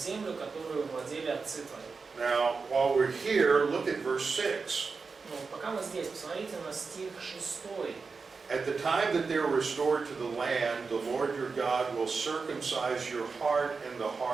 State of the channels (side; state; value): left; quieter; 4.7 dB